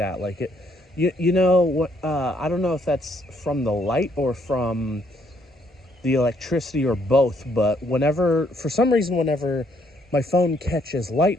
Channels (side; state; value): both; normal; correlation 0.70